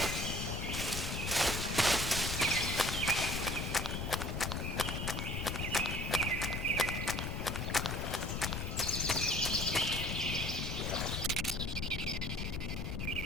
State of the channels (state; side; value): noise; left; rumble, 2 dB below the sound